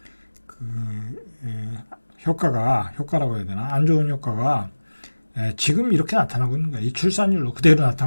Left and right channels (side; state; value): both; inverted; correlation -1.00